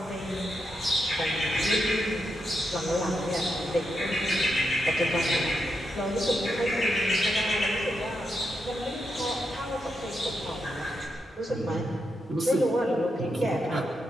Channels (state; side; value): normal; both; correlation 0.84